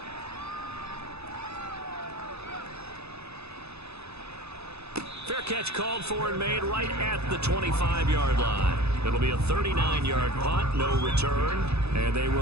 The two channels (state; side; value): late; left; 0.79 ms